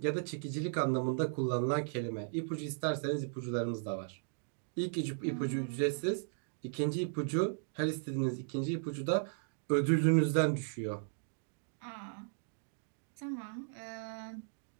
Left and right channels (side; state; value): left; silent; digital silence